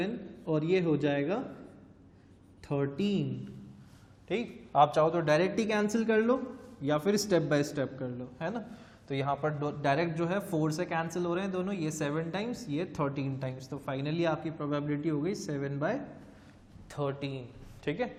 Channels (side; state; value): both; identical; correlation 1.00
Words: और ये हो जाएगा 13, ठीक, आप चाहो तो डायरेक्ट ही कैंसिल कर लो या फिर स्टेप बाय स्टेप कर लो, है ना। तो यहाँ पर डायरेक्ट जो है 4 से कैंसिल हो रहे हैं दोनों, ये 7 टाइम्स, ये 13 टाइम्स, तो फाइनली आपकी प्रोबेबिलिटी हो गई 7/13। ठीक है,